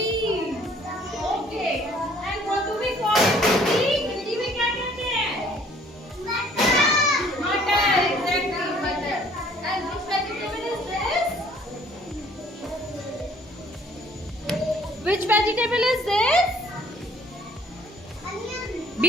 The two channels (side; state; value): both; normal; correlation 0.58